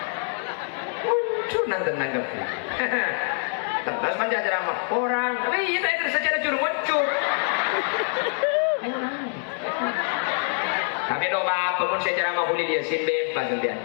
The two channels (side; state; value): right; silent; 56 dB below the other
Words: Muncul nanti nanggapi. Terus panjang ceramah orang. Tapi kita itu secara muncul. Tapi doa pemun secara mahuli dia sin bebas dia.